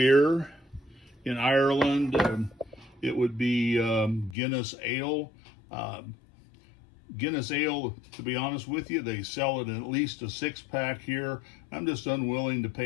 In Ireland, it would be Guinness Ale. Guinness Ale, to be honest with you, they sell it in at least a 6-pack here. I'm just unwilling to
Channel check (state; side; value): drops out; right; at 4.4 s